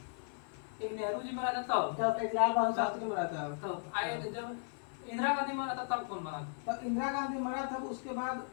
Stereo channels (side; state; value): right; silent; 54 dB below the other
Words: एक नेहरू जी मरा था तब, एक लाल बहादुर शास्त्री मरा था तब आए जब इंदिरा गांधी मरा था तब कौन मरा? तब इंदिरा गांधी मरा था। उसके बाद